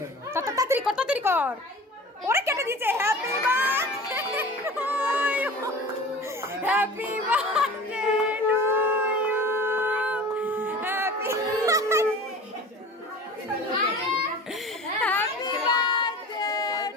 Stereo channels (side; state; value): both; normal; correlation 0.39